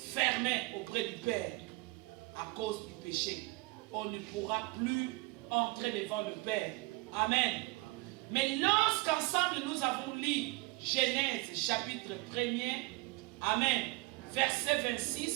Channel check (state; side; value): quieter; left; 24.0 dB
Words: auprès du Père. À cause du péché, on ne pourra plus entrer devant le Père. Amen. Mais lorsqu'ensemble nous avons lu Genèse chapitre 1er, Amen, verset